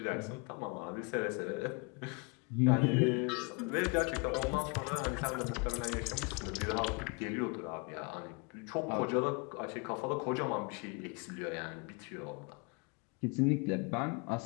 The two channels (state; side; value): quieter; right; 32.6 dB